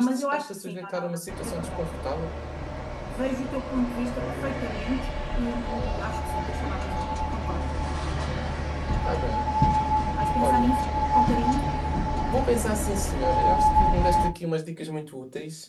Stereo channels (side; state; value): both; identical; correlation 1.00